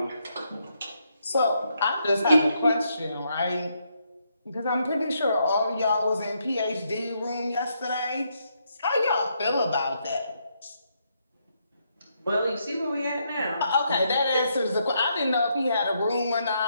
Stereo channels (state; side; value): inverted; both; correlation -0.77